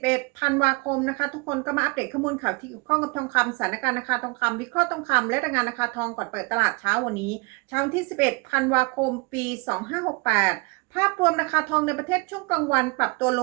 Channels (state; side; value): quieter; left; 28.4 dB